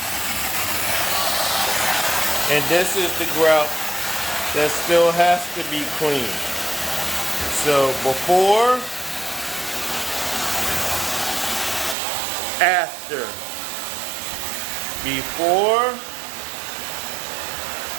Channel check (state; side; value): drops out; left; at 12.0 s